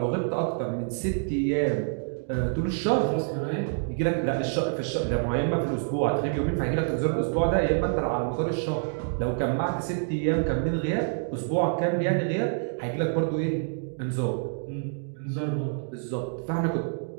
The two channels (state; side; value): silent; left; digital silence